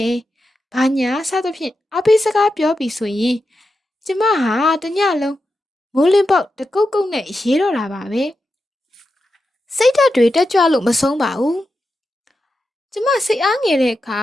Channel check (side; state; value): both; normal; correlation 0.89